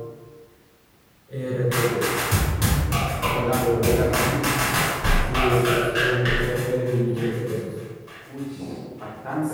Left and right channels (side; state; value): both; identical; correlation 1.00